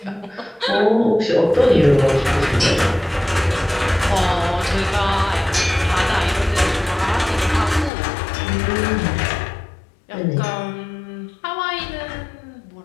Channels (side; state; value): right; drops out; at 7.9 s